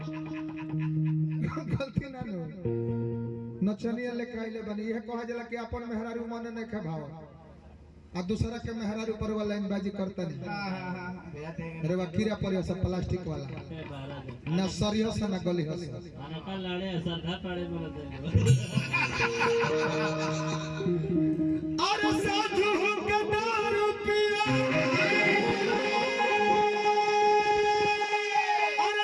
गलती ना नु नचनिया लेके आइले बनी यह कहा जला कि अपन मेहरारू मन नहीं खे भाव आ दूसरा के मेहरारू पर वाला लाइन बाजी करता नहीं जाते अरे वा कीड़ा पड़े सब प्लास्टिक वाला ना सरियो से ना गली हस अनका लाड़े सरधा पड़े बोल दे अरे साधु के दारू पिया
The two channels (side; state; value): both; identical; correlation 1.00